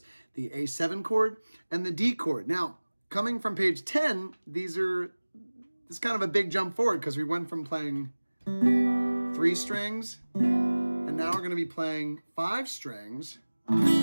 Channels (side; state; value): both; inverted; correlation -1.00